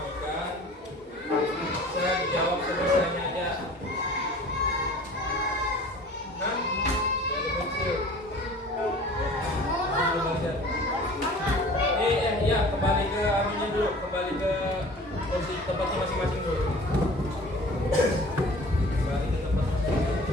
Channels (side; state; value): both; normal; correlation 0.45